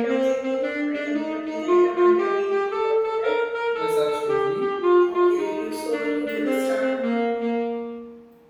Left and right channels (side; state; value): both; identical; correlation 1.00